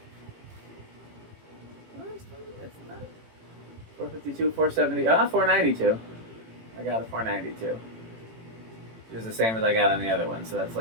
452, 470, 492. I got a 492. It was the same as I got on the other one, so that's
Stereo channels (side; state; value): left; late; 18 ms